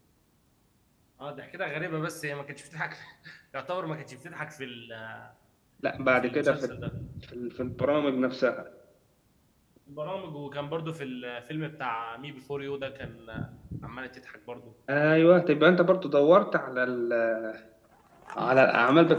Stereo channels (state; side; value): identical; both; correlation 1.00